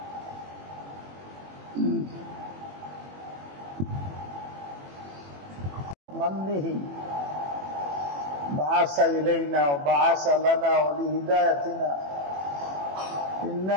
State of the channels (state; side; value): late; left; 21 ms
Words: بعث إلينا وبعث لنا ولهدايتنا